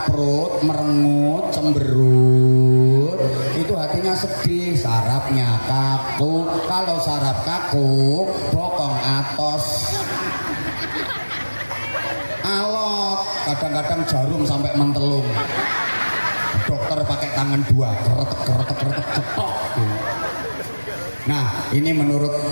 merengut, cemberut, itu hatinya sedih, sarafnya kaku. Kalau saraf kaku, bokong atos. Alot, kadang-kadang jarum sampai mentelung. Dokter pakai tangan 2, keretek cetok. Nah, ini menurut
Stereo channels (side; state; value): both; inverted; correlation -1.00